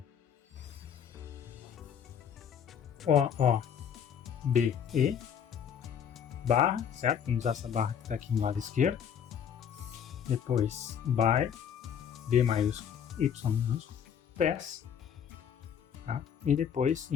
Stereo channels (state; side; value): quieter; right; 8.1 dB